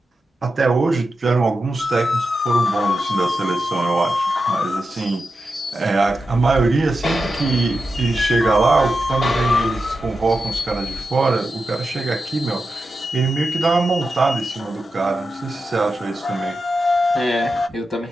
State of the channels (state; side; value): normal; both; correlation 0.89